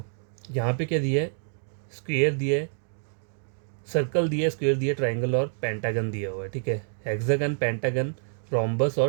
यहाँ पे क्या दिया है, स्क्वेयर दिया है, सर्कल दिया है, स्क्वेयर दिया है, ट्राइंगल और पेंटागन दिया हुआ है, ठीक है। हेक्सागन, पेंटागन, रोम्बस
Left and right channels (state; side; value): silent; left; 58 dB below the other